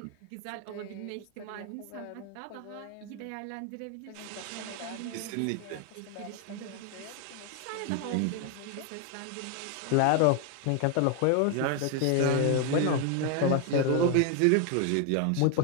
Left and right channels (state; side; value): different; both; correlation 0.00